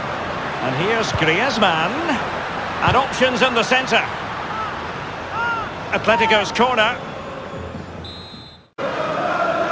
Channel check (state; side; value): identical; both; correlation 1.00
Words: And here's Griezmann. And options in the centre. Atletico's corner.